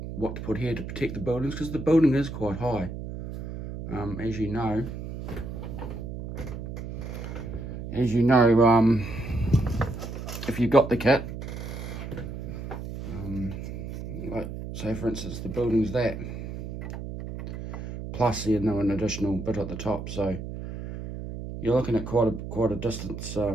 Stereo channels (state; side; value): noise; right; hum, 8 dB below the sound